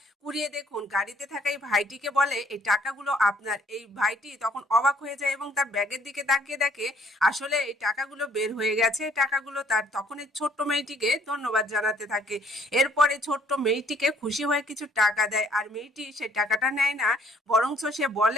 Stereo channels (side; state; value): both; normal; correlation 0.63